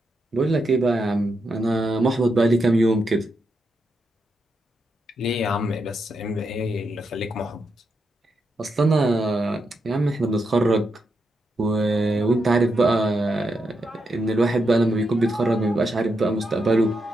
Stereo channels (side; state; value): both; normal; correlation 0.83